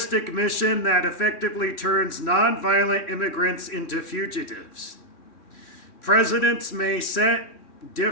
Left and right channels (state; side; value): late; right; 3.6 ms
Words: mission that effectively turns nonviolent immigrants into fugitives. Presidents may set